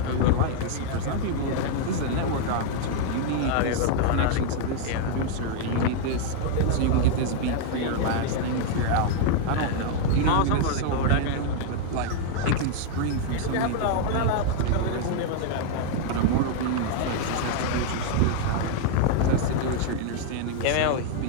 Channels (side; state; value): both; different; correlation 0.00